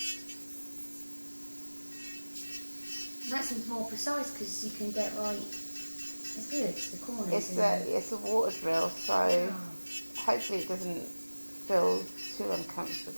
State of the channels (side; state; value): both; inverted; correlation -1.00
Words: That seems more precise because you can get right. It's good. The corners. It's a water drill, so hopefully it doesn't feel too